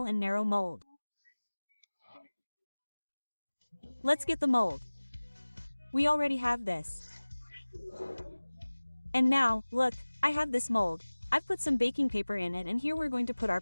and narrow mold. Let's get the mold. We already have this. And now, look, I have this mold. I've put some baking paper in it, and here we're going to put our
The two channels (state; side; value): inverted; both; correlation -1.00